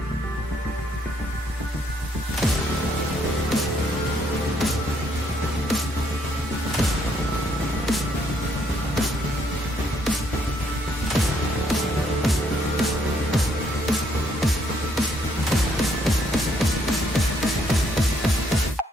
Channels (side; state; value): both; normal; correlation 0.70